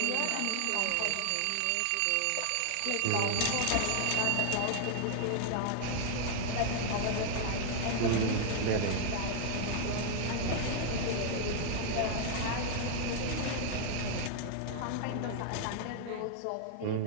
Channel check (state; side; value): different; both; correlation 0.00